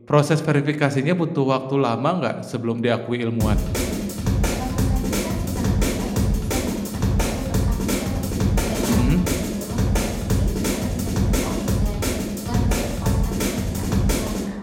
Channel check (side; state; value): both; identical; correlation 1.00